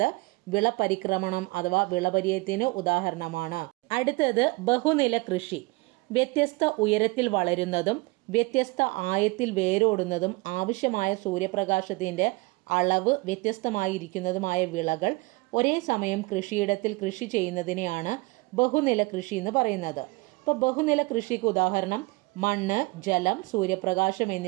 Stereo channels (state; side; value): quieter; left; 24.9 dB